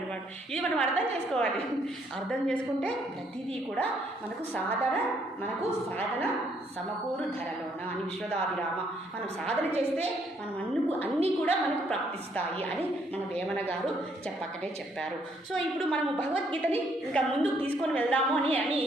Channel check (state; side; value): normal; both; correlation 0.69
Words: ఇది మనం అర్థం చేసుకోవాలి. అర్థం చేసుకుంటే ప్రతిదీ కూడా మనకు సాధన సమకూరు ధరలోన అని విశ్వదాభిరామ. మనం సాధన చేస్తే మనం అన్నీ కూడా మనకు ప్రాప్తిస్తాయి అని మన వేమన గారు చెప్పారు. సో ఇప్పుడు మనము భగవద్గీతని ఇంకా ముందుకు తీసుకొని వెళ్దాము అని